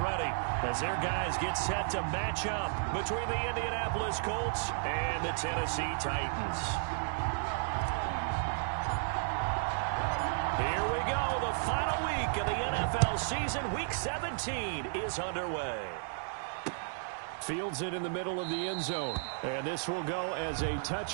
as their guys get set to match up between the Indianapolis Colts and the Tennessee Titans. Here we go. The final week of the NFL season, Week 17, is underway. Fields it in the middle of the end zone. And this will go as a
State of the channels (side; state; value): left; silent; digital silence